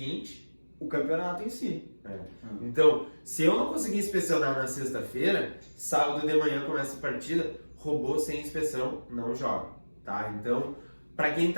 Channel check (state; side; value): inverted; both; correlation -1.00